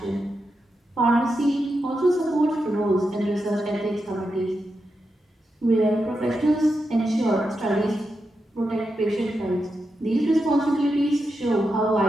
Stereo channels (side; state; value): both; normal; correlation 0.87